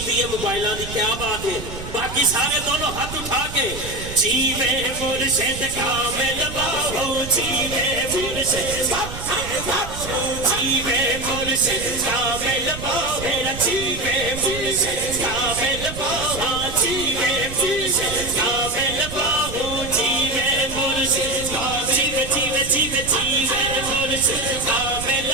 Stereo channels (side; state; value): right; noise; rumble, 10 dB below the sound